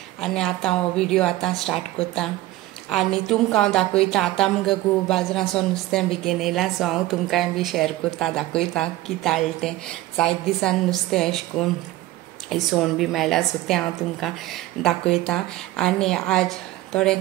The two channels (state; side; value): quieter; left; 16.6 dB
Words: आनी आतां हांव व्हिडिओ आतां स्टार्ट करता आनी तुमकां हांव दाखयता आतां मुगे घोव बाजारांतसून नुस्तें बेगीन येयलां सो हांव तुमकां बी शेअर करता दाखयता कितें हाडलें तें. जायत दिसान नुस्तें अशें करून इसवण बी मेळ्ळा सो तें हांव तुमकां दाखयता आनी आज थोडें